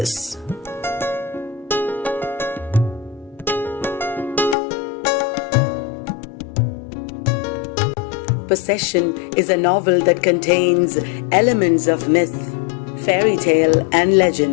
Possession is a novel that contains elements of myth, fairy tale, and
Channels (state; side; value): drops out; right; at 4.5 s